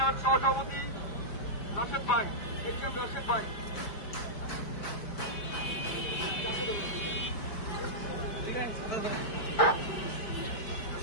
সহসভাপতি রাশেদ ভাই। রাশেদ ভাই,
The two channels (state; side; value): late; right; 4.9 ms